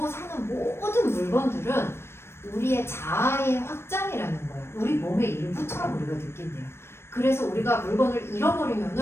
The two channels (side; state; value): right; late; 0.12 ms